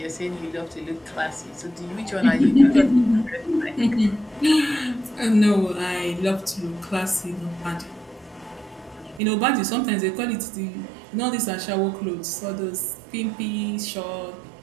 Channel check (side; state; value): left; drops out; at 9.2 s